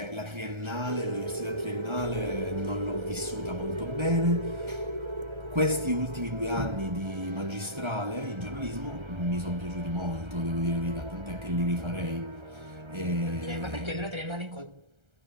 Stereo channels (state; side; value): late; left; 1.3 ms